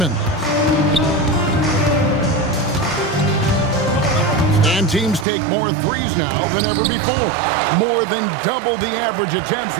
And teams take more threes now than ever before. More than double the average attempts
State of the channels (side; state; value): left; drops out; at 5.2 s